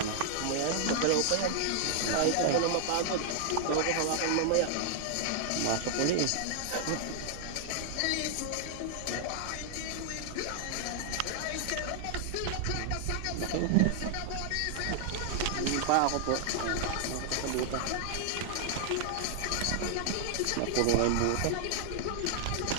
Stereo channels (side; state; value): both; different; correlation 0.00